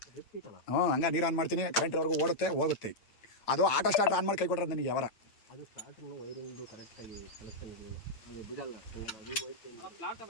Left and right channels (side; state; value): right; late; 8.9 ms